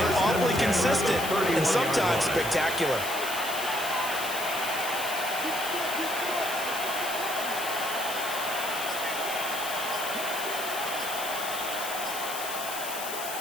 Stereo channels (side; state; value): left; noise; hiss, 7 dB below the sound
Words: awfully consistent and sometimes spectacular.